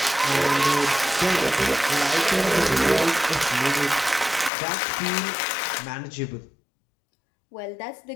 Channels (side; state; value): right; drops out; at 4.5 s